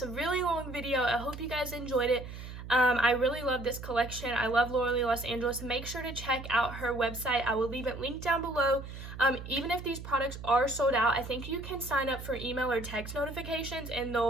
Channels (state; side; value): noise; right; hum, 11 dB below the sound